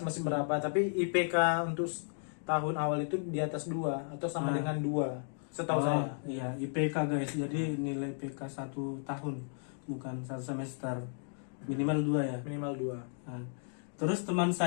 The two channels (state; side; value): silent; right; digital silence